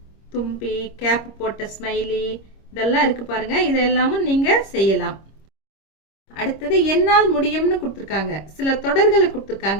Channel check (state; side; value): late; right; 26 ms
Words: தும்பி, கேப் போட்ட ஸ்மைலி, இதெல்லாம் இருக்கு பாருங்க. இதெல்லாமும் நீங்க செய்யலாம். அடுத்தது என்னால் முடியும்னு கொடுத்துருக்காங்க. சில தொடர்களை